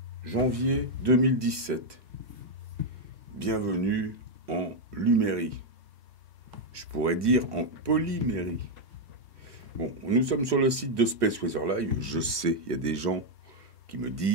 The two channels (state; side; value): late; left; 1.0 ms